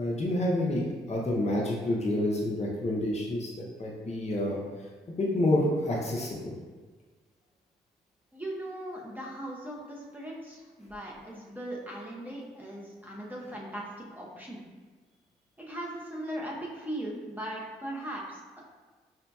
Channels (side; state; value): both; normal; correlation 0.71